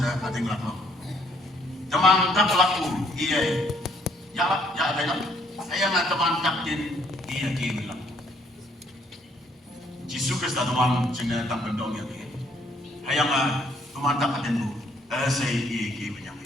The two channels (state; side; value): normal; both; correlation 0.67